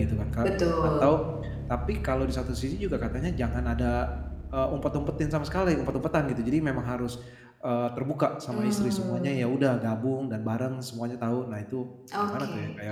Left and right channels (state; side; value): identical; both; correlation 1.00